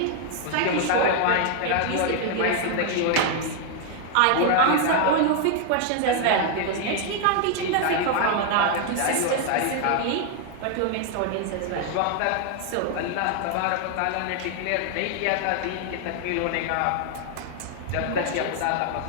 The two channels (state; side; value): different; both; correlation 0.00